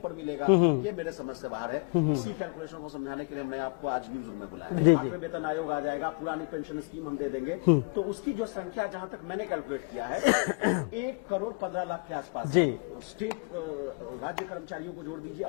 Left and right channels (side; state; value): right; quieter; 33.8 dB